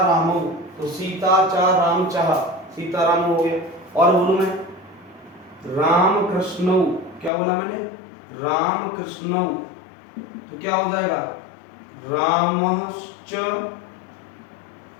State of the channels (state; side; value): drops out; right; at 7.3 s